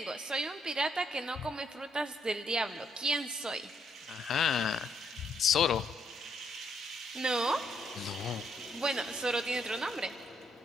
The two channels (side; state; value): both; normal; correlation 0.72